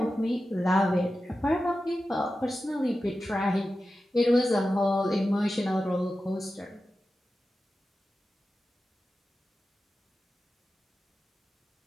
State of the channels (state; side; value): normal; both; correlation 0.93